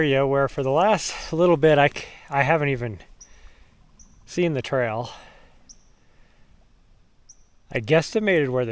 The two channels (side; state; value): both; identical; correlation 1.00